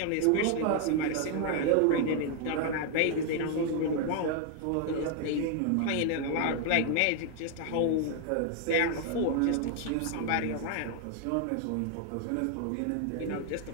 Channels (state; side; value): different; both; correlation 0.00